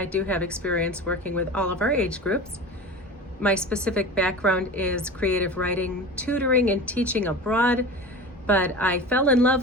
do have experience working with all of our age groups. My specific background is creative writing, tutoring, and teaching abroad, but I fell in love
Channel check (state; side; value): normal; both; correlation 0.33